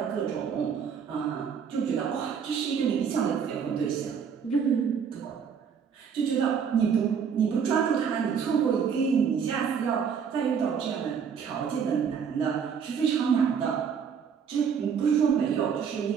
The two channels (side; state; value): left; quieter; 7.0 dB